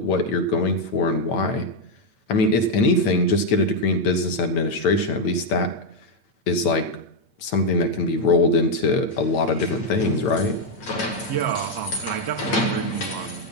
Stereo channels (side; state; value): right; late; 8.9 ms